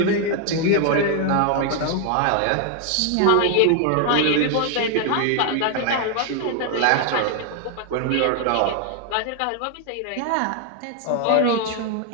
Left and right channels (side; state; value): both; different; correlation 0.00